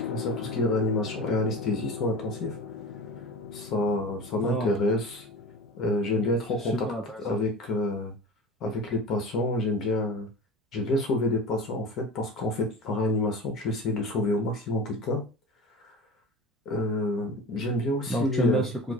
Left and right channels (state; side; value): normal; both; correlation 0.32